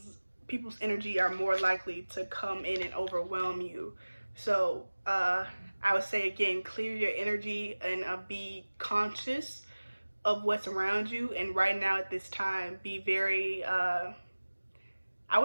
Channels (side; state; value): both; inverted; correlation -1.00